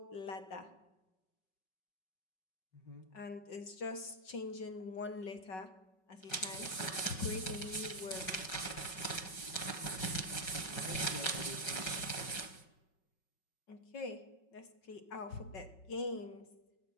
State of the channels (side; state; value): right; late; 5.4 ms